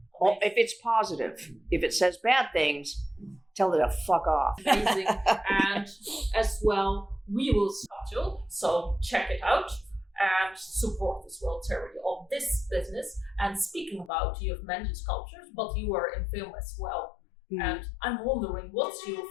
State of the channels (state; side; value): drops out; right; at 14.1 s